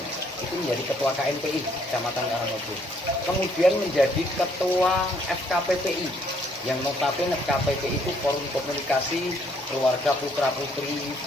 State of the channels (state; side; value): normal; both; correlation 0.67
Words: menjadi Ketua KNPI Kecamatan Karangmojo. Kemudian menjadi Ketua FKPPI, yang notabene FKPPI itu Forum Komunikasi Keluarga Putra Putri